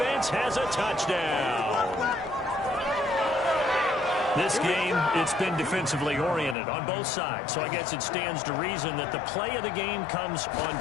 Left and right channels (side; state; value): right; drops out; at 6.6 s